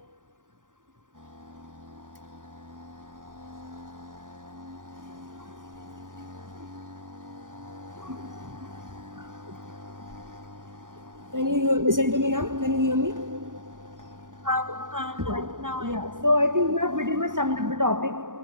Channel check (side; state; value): left; late; 0.88 ms